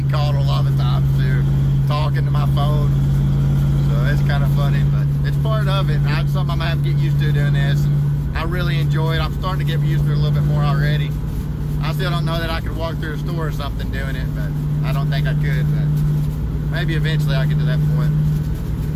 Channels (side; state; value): both; identical; correlation 1.00